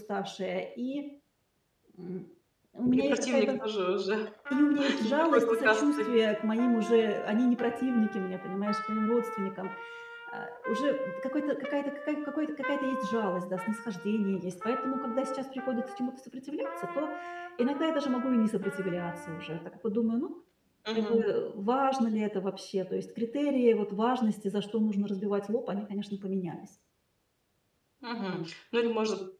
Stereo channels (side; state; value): both; identical; correlation 1.00